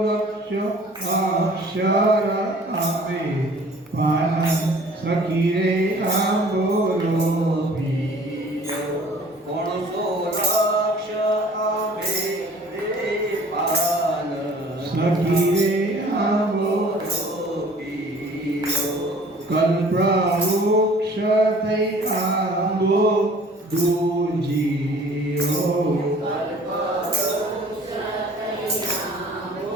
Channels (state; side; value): normal; both; correlation 0.51